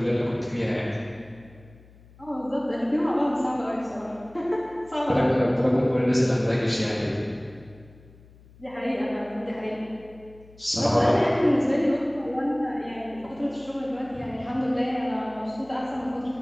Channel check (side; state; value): left; noise; hum, 24 dB below the sound